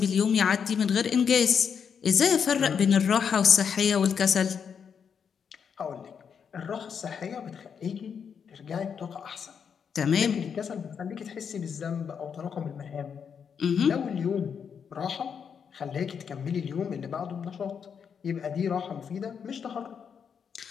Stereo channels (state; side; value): quieter; right; 7.0 dB